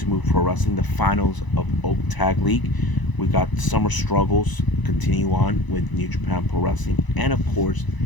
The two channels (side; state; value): right; late; 1.0 ms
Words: Move Pro Wrestling, the finals of Oak Tag League. We got summer struggles continue on with New Japan Pro Wrestling, and of course,